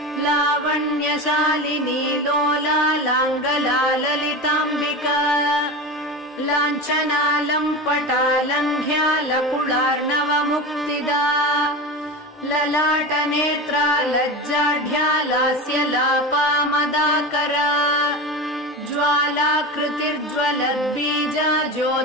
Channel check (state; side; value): normal; both; correlation 0.26